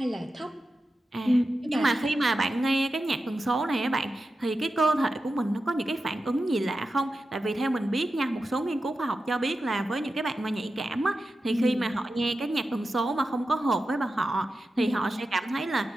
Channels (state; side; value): normal; both; correlation 0.91